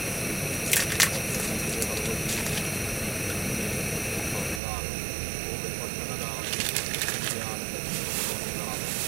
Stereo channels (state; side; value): drops out; left; at 4.6 s